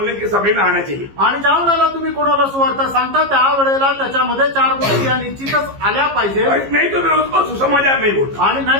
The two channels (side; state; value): left; late; 15 ms